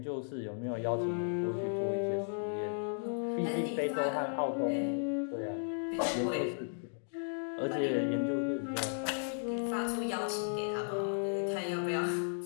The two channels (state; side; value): silent; right; digital silence